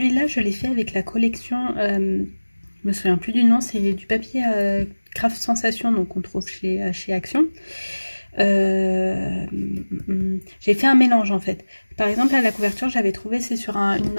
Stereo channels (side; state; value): both; inverted; correlation -1.00